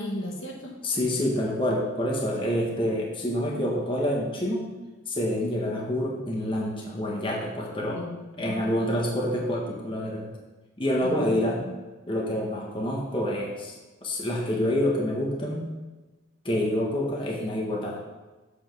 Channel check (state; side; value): normal; both; correlation 0.59